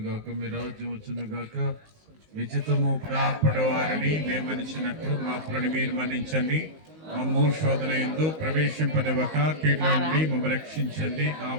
గాక, మీ రాజ్యం వచ్చును గాక, మీ చిత్తము ప్రాపడి వారిని మేమనిచ్చినట్లు మా అప్పులను మీరు మన్నించండి. మమ్ము శోధన యందు ప్రవేశింపనివ్వక కీడుల నుండి మమ్మల్ని రక్షించండి.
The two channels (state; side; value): late; left; 19 ms